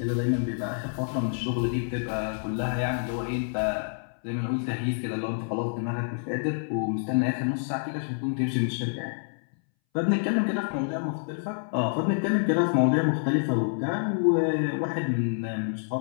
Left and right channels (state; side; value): silent; right; 60 dB below the other